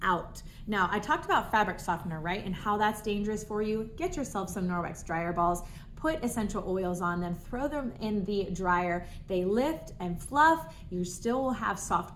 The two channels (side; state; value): both; identical; correlation 1.00